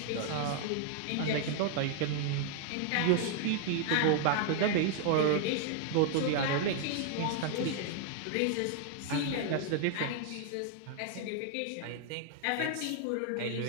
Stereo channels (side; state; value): both; different; correlation 0.00